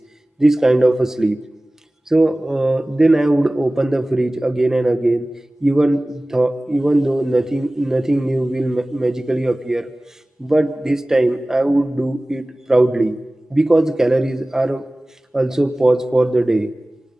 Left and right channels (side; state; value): both; normal; correlation 0.98